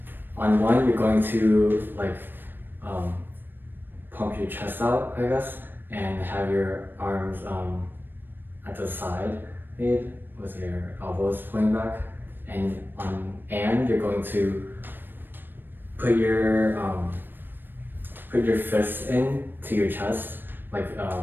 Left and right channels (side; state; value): left; late; 0.095 ms